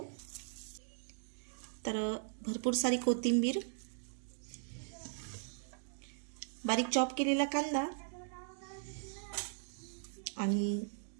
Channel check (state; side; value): silent; left; digital silence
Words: तर भरपूर सारी कोथिंबीर, बारीक चॉप केलेला कांदा आणि